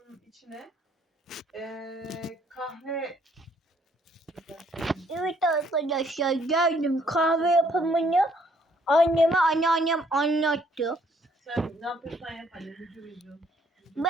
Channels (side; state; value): both; normal; correlation 0.66